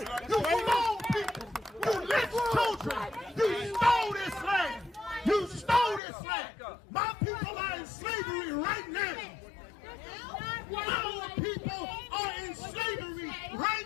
You clone people. You lynched children. You stole this land. You stole this land. My people are in slavery right now. Our people are in slavery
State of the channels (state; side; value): drops out; right; at 6.0 s